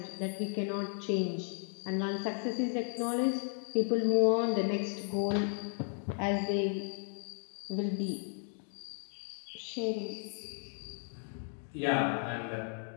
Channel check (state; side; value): silent; right; 55 dB below the other